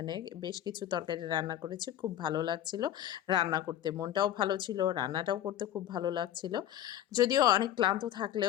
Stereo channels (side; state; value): right; quieter; 11.5 dB